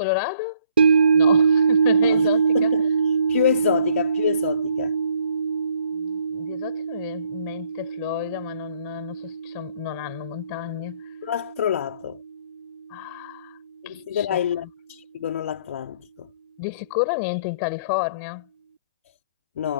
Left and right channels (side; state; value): both; inverted; correlation -0.65